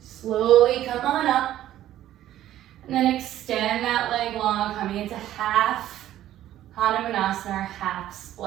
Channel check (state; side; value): quieter; left; 12.9 dB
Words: Slowly come on up, and then extend that leg long, coming into half Hanumanasana, or half